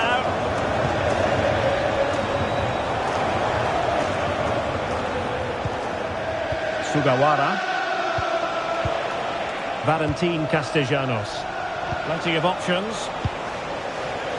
Sugawara. Valentin Castellanos. Plenty of options.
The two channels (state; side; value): identical; both; correlation 1.00